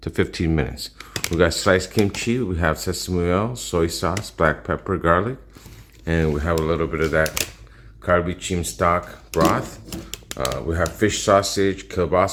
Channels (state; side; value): identical; both; correlation 1.00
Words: to 15 minutes. We got sliced kimchi, we have sesame oil, soy sauce, black pepper, garlic, and we have a little bit of that kalbi jjim stock broth. We have fish sausage,